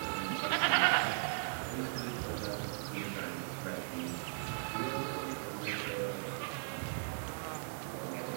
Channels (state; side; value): silent; left; digital silence